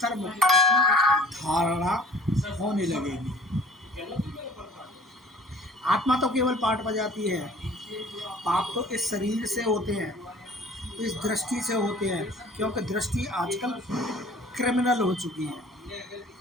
की धारणा होने लगेगी। आत्मा तो केवल पाठ बजाती है, पाप तो इस शरीर से होते हैं, इस दृष्टि से होते हैं, क्योंकि दृष्टि आजकल क्रिमिनल हो चुकी है।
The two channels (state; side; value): normal; both; correlation 0.49